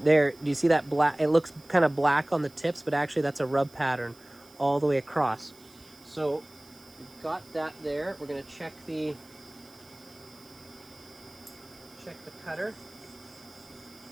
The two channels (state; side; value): noise; right; hiss, 26 dB below the sound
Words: There, do you see that black? It looks kind of black on the tips, but actually that's a rub pattern all the way across. So we've got that there. We're going to check the cutter.